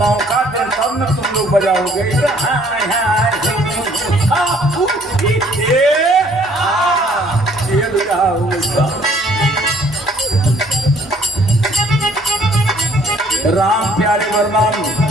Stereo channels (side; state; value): both; normal; correlation 0.60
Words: मौका दे तब न तुम लोग बजाओगे। ये भी रहा होगा। राम प्यारे बरमान